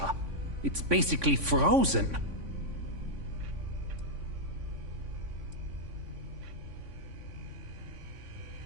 It's basically frozen.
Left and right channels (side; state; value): left; late; 3.5 ms